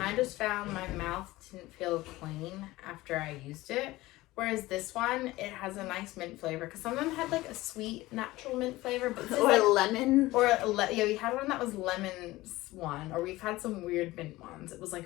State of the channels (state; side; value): quieter; right; 18.5 dB